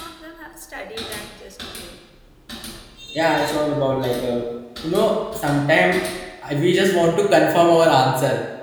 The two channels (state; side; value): identical; both; correlation 1.00